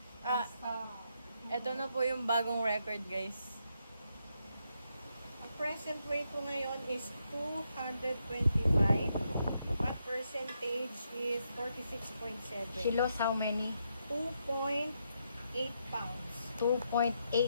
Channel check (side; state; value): both; inverted; correlation -0.80